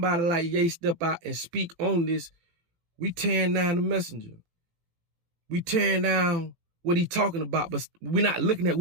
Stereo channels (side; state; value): left; late; 18 ms